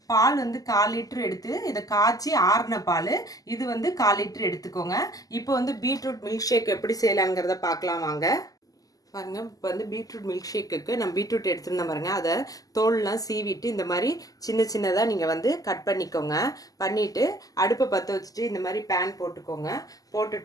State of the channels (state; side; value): late; right; 0.17 ms